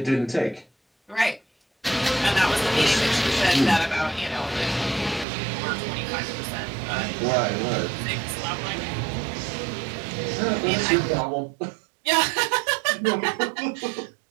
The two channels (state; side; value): drops out; left; at 5.2 s